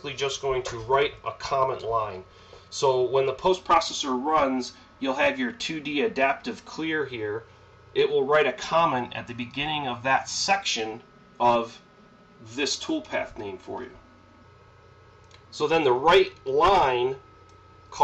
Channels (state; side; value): identical; both; correlation 1.00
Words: just going to write a comment line. So when the post processor runs, you'll have your 2D adaptive clear here. It will write a comment at the beginning of that section of this toolpath name for you. So then the write line